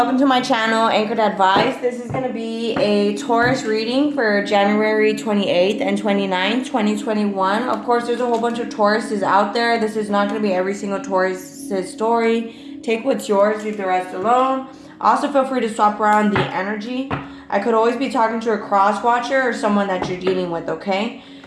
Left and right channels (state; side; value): identical; both; correlation 1.00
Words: to my channel, Anchored Advice. This is going to be a Taurus reading for January 28th and 29th, 2021. Of course, there's a whole bunch of Tauruses out there. This is not going to be every single Taurus's story. Take what's yours, leave the rest alone. Also, feel free to swap around the energy. I could always be talking to a cross watcher or someone that you're dealing with, okay?